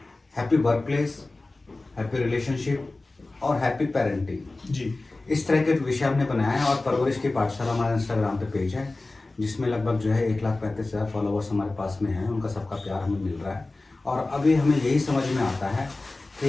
happy work place, happy relationship और हैप्पी पेरेंटिंग जी। इस तरह के विषय हमने बनाया है। और परवरिश की पाठशाला हमारा इंस्टाग्राम पे पेज है जिसमें लगभग जो है 1,35,000 फॉलोवर्स हमारे पास में हैं। उनका सबका प्यार हमें मिल रहा है और अभी हमें यही समझ में आता है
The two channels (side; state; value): right; quieter; 3.1 dB